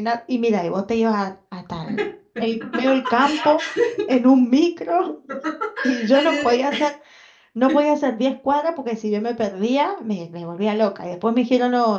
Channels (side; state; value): both; identical; correlation 1.00